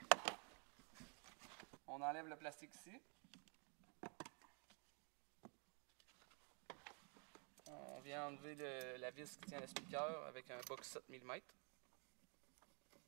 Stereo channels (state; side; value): quieter; left; 37.1 dB